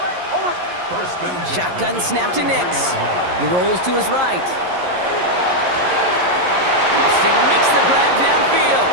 Shotgun snap to Nix. He rolls to his right. Austin makes the grab downfield.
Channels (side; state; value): left; late; 11 ms